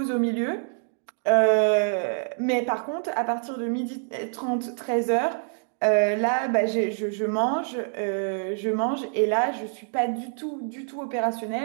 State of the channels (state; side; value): silent; left; 61 dB below the other